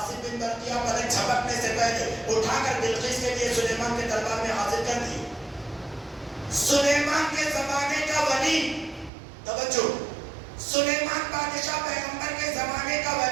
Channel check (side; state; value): left; drops out; at 9.1 s